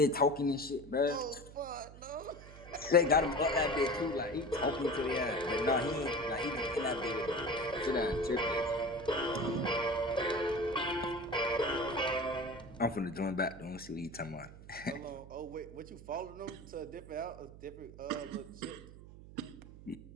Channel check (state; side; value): noise; right; hum, 17 dB below the sound